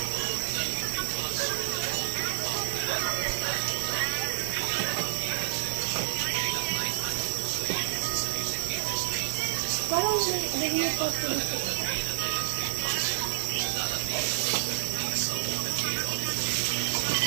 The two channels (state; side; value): silent; left; digital silence